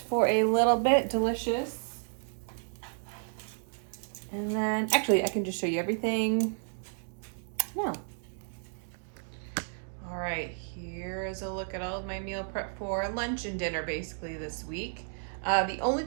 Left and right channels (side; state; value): left; silent; digital silence